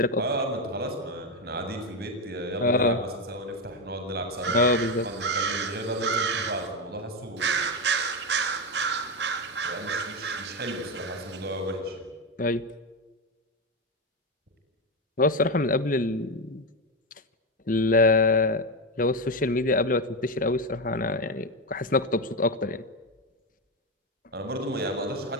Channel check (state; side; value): normal; both; correlation 0.11